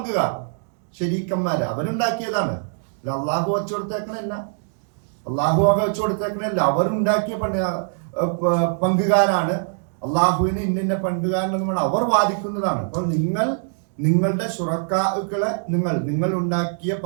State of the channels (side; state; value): left; silent; digital silence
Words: ശരീക്കന്മാര്, അവരുണ്ടാക്കിയതാണ്. അള്ളാഹു വെച്ചു കൊടുത്തേക്കണല്ല, അവരുണ്ടാക്കിയ പങ്കുകാരാണ്. അള്ളാഹുവിന് ഇന്ന പങ്കുകാരനെന്ന് അവർ വാദിക്കുന്നതാണ്. അപ്പോൾ നിങ്ങളുടെ ശുറക്കാക്കളെ, നിങ്ങൾ ഉണ്ടാക്കിയ